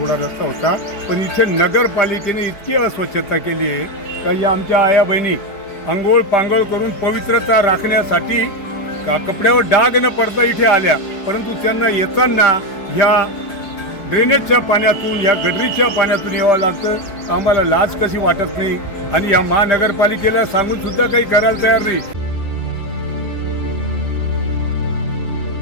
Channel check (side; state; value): right; late; 5.1 ms